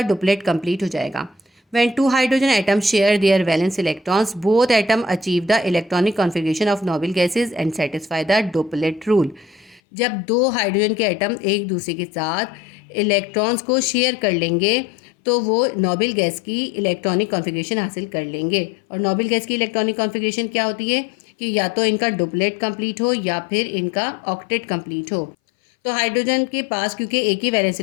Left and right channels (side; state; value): right; drops out; at 9.8 s